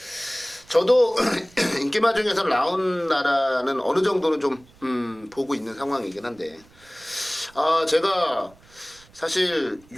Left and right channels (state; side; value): noise; right; rumble, 28 dB below the sound